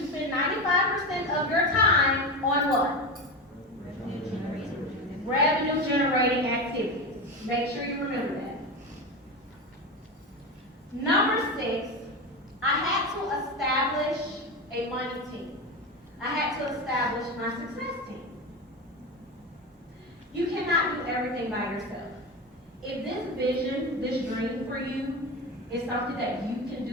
spend 95% of your time on what? Revenue generating activities. Make sure you remember that. Number 6, I had to establish a money team. I had to establish my success team. You cannot do everything by yourself. If this vision, this dream for you is something that you can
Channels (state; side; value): normal; both; correlation 0.21